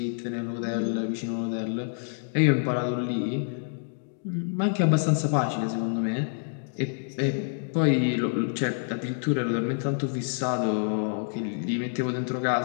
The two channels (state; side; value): silent; right; digital silence